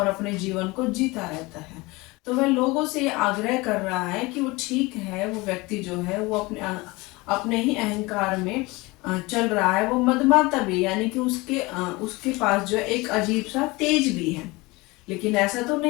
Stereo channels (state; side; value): quieter; right; 23.1 dB